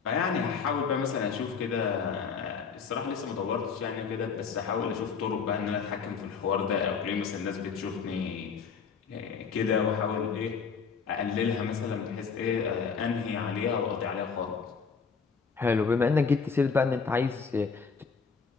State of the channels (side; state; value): right; quieter; 5.6 dB